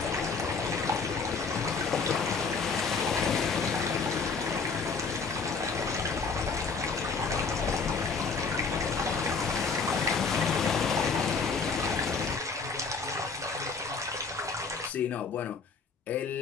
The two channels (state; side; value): quieter; right; 4.7 dB